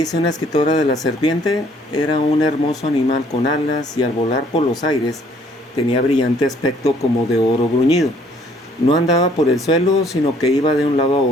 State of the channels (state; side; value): normal; both; correlation 0.62